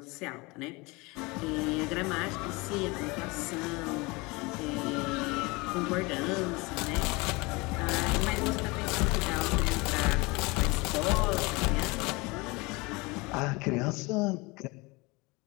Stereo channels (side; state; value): right; quieter; 25.2 dB